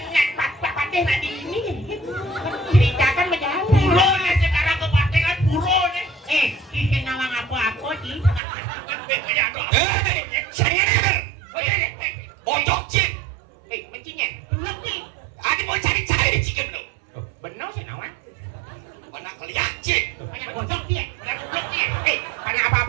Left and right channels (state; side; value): drops out; left; at 8.4 s